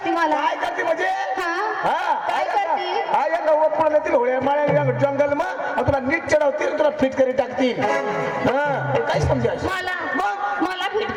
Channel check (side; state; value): both; identical; correlation 1.00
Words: मला काय करते म्हणजे काय करते हा या गवत पडल्यातील होळ्या माळ्या जंगल मग तुला नीट चढवतील तुला फिट करी टाकतील काय समजायचं मला फिट